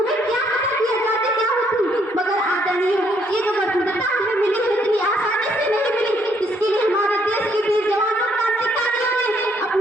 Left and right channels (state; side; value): normal; both; correlation 0.69